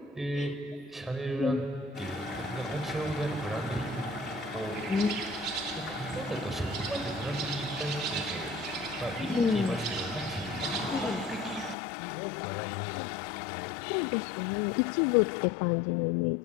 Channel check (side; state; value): right; drops out; at 11.8 s